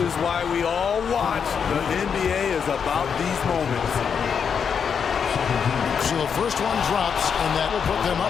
is why we all watch. The NBA is about these moments. So the first one drops, and that will put them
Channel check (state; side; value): quieter; right; 6.8 dB